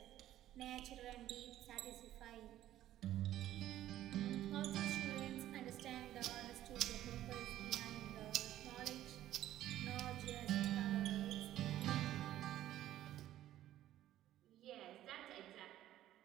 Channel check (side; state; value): left; quieter; 13.2 dB